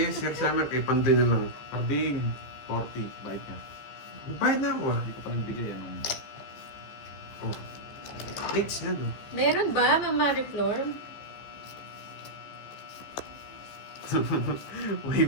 Sir Summer, kay Pandoy na lang. Karding, 40. Bayad ka. Bayad na ako ah. Hindi ko pa nagbigay. Anong... Oh. Dates na no? Meron ba, Ma'am Mariflor? Uy,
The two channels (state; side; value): late; right; 15 ms